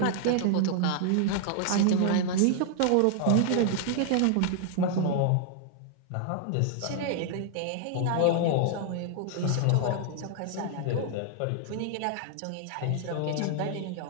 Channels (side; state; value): both; different; correlation 0.00